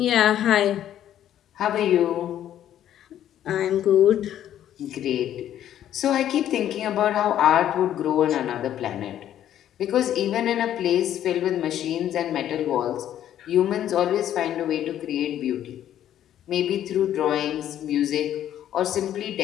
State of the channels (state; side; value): quieter; right; 11.2 dB